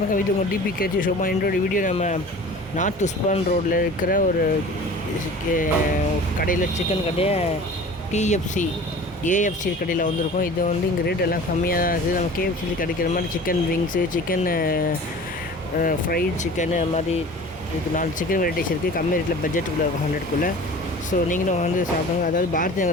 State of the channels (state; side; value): normal; both; correlation 0.42